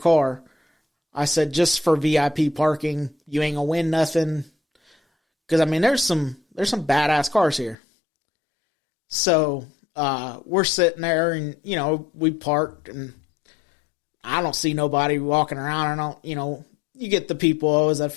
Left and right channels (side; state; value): right; drops out; at 7.8 s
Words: I said, just for VIP parking, you ain't gonna win nothing. Because I mean, there's some badass cars here. So we're sitting there, and we parked, and I don't see nobody walking around. I don't, you get the people, oh, is that